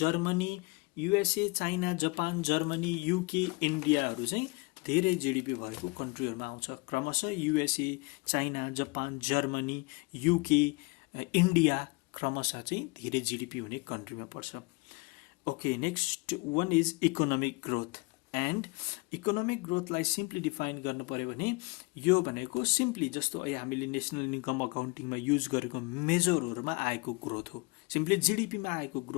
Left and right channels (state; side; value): quieter; right; 27.1 dB